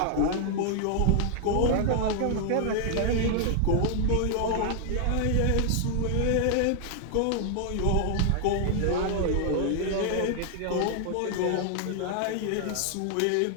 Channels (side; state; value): both; different; correlation 0.00